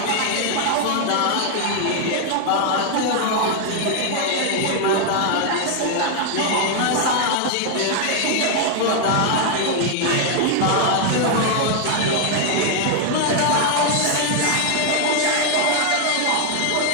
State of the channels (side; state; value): both; different; correlation 0.00